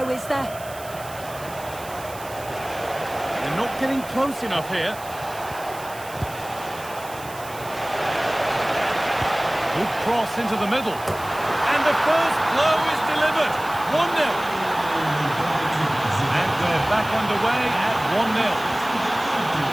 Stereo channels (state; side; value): noise; right; hiss, 17 dB below the sound